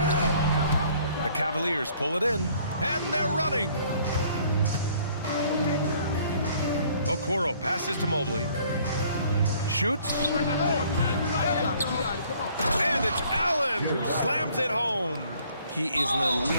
The Cavaliers pull it in, and they're running. Okoro passes to Mobley. Shoots. And it's Allen who slams it home. He is an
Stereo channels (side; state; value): both; inverted; correlation -0.59